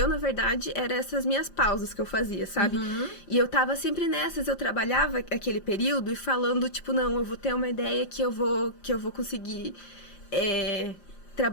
na verdade, eram essas minhas pausas que eu fazia, sabe? E eu tava sempre nessas, eu trabalhava aquele período e falando, tipo, não, eu vou ter uma ideia que eu vou conseguir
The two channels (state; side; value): late; right; 5.7 ms